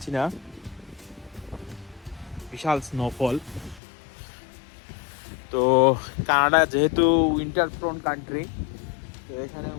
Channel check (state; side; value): drops out; right; at 3.8 s